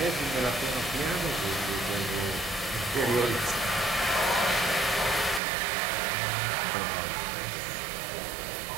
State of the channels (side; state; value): left; drops out; at 5.4 s